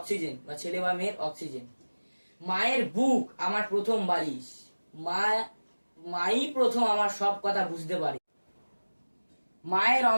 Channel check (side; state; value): both; inverted; correlation -1.00